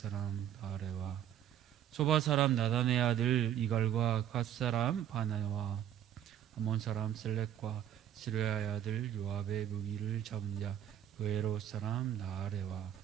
바레와 소바 사람 나단의 아들 이갈과 갓 사람 바나와 아몬 사람 셀렉과 스루야의 아들 요압의 무기를 잡은 자 그에롯 사람 나아레와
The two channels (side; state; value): left; quieter; 10.6 dB